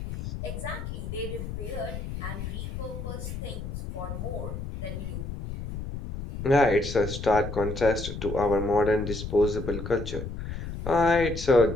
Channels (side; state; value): left; noise; rumble, 7 dB below the sound